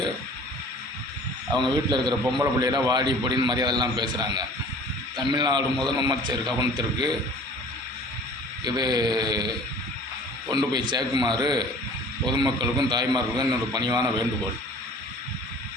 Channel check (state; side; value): normal; both; correlation 0.47